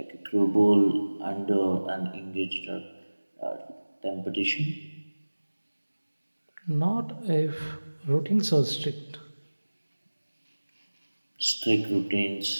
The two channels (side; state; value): both; inverted; correlation -1.00